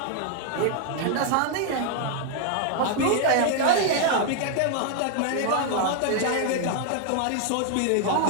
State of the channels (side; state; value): both; different; correlation 0.00